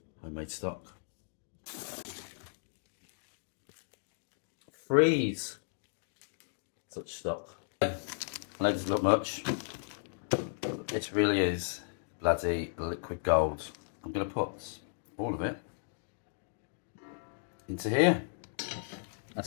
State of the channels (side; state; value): right; silent; digital silence